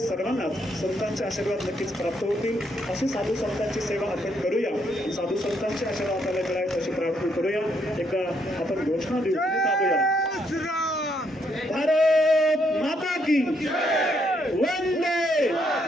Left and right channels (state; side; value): normal; both; correlation 0.73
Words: संतांचे आशीर्वाद नक्कीच प्राप्त होतील. अशी साधू संतांची सेवा आपण करूया. साधू संतांचे आशीर्वाद आपल्याला मिळावेत अशी प्रार्थना करूया. एकदा आपण घोषणा देऊ. भारत माता की वंदे.